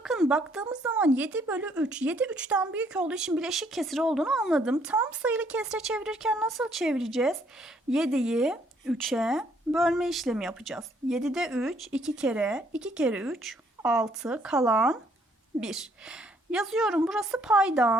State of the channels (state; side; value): normal; both; correlation 0.67